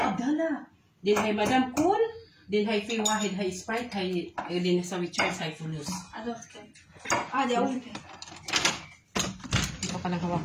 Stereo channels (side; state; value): both; identical; correlation 1.00